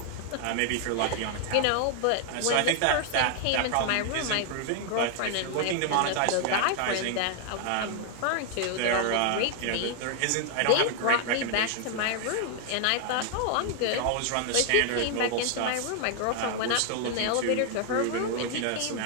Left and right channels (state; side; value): different; both; correlation 0.00